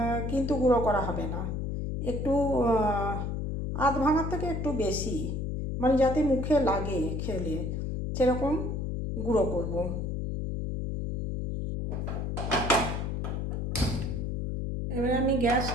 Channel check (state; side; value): noise; left; hum, 2 dB below the sound